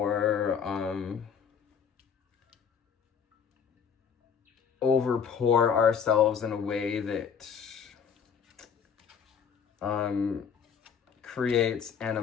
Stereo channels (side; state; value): right; quieter; 7.1 dB